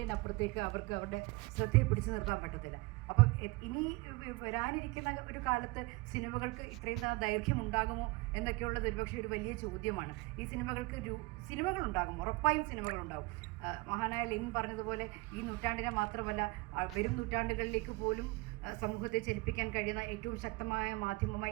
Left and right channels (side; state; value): left; quieter; 23.9 dB